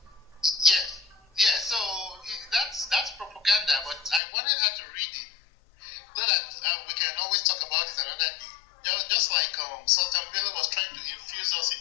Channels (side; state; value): right; drops out; at 4.2 s